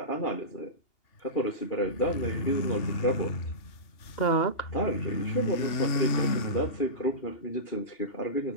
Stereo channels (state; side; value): late; right; 2.8 ms